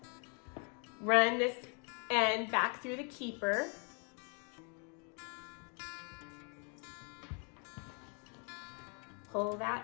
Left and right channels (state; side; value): quieter; right; 37.9 dB